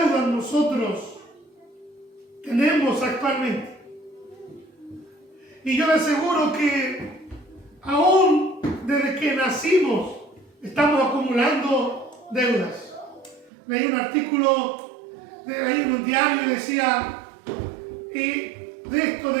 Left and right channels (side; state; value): left; drops out; at 13.5 s